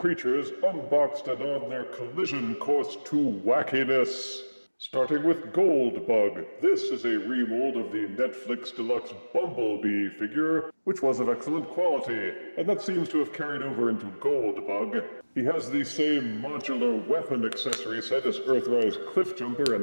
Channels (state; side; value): inverted; both; correlation -1.00